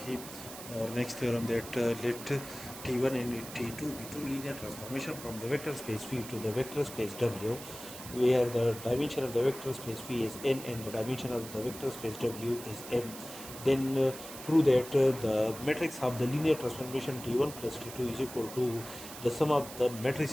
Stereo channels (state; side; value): noise; right; hiss, 13 dB below the sound